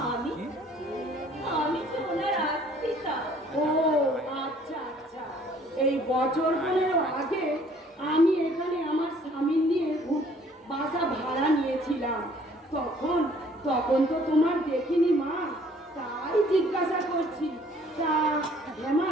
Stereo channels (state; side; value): normal; both; correlation 0.58